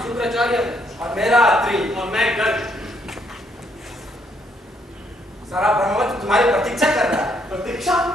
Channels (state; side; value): normal; both; correlation 0.72